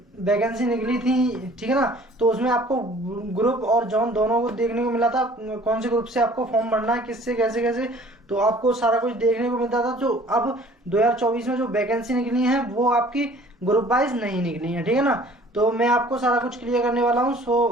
वैकेंसी निकली थी, ठीक है ना, तो उसमें आपको ग्रुप और जॉन दोनों को देखने को मिला था। कौन से ग्रुप से आपको फॉर्म भरना है, किससे कैसे कैसे, तो आपको सारा कुछ देखने को मिलता था। जो अब 2024 में जो वैकेंसी निकली है वो आपकी ग्रुप वाइज नहीं निकली है, ठीक है ना। तो मैं आपको सारा कुछ क्लियर करने वाला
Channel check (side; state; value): both; normal; correlation 0.52